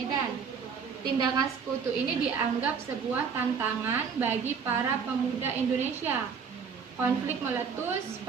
Tindakan Sekutu ini dianggap sebuah tantangan bagi para pemuda Indonesia. Konflik meletus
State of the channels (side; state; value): left; quieter; 6.2 dB